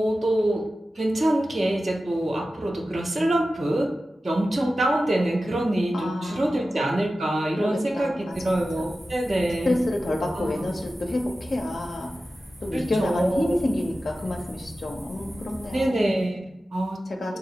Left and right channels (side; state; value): both; normal; correlation 0.94